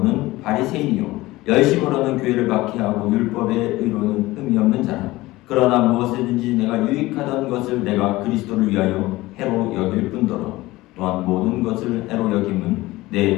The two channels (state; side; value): quieter; right; 18.9 dB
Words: 바리새인이요 열심으로는 교회를 박해하고 율법의 의로는 흠이 없는 자라. 그러나 무엇이든지 내가 유익하던 것을 내가 그리스도를 위하여 해로 여길 뿐더러 또한 모든 것을 해로 여김은 내